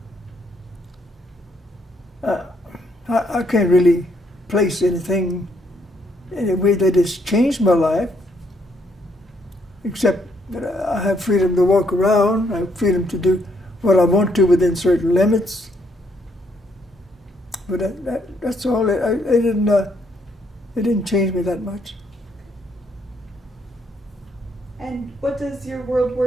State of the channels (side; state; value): both; normal; correlation 0.72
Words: I can't really place anything in a way that has changed my life, except that I have freedom to walk around, I have freedom to do what I want to within certain limits. But that's all. It didn't change me that much. And what does your World